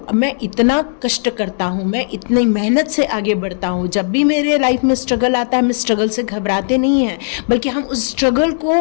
मैं इतना कष्ट करता हूँ, मैं इतनी मेहनत से आगे बढ़ता हूँ, जब भी मेरे लाइफ में स्ट्रगल आता है, मैं स्ट्रगल से घबराते नहीं हैं, बल्कि हम उस स्ट्रगल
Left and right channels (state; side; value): silent; right; digital silence